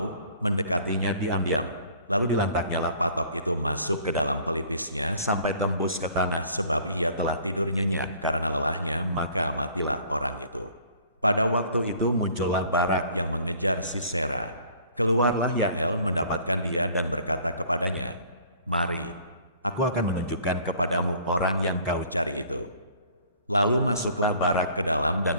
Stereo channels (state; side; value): inverted; both; correlation -0.54